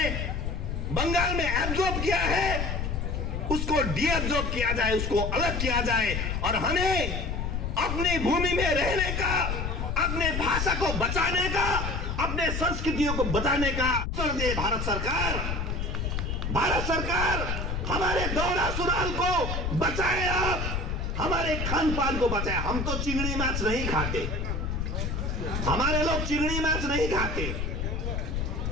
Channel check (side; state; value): left; noise; rumble, 2 dB below the sound